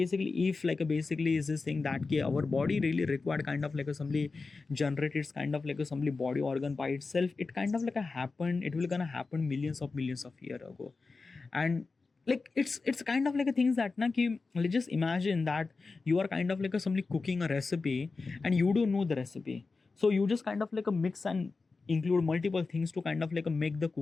is this thing that our body really required kind of like a somebody generate its kind of like a somebody body organ by itself, it kind of like a happen, it will gonna happen millions of year ago. And like it's kind of like a things that na ki, let's just imagine that you are kind of like a somebody cooking a recipe and you don't know the recipe. So you just kind of like a mix and include multiple things to kind of like a make the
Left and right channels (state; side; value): quieter; right; 4.1 dB